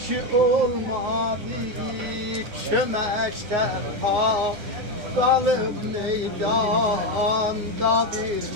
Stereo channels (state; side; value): late; left; 9.6 ms